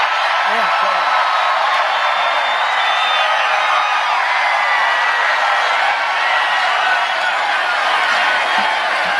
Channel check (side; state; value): both; identical; correlation 1.00